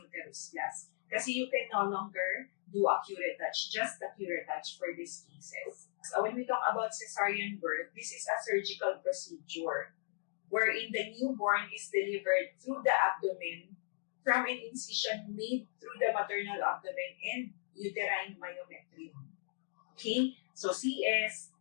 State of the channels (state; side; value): silent; right; digital silence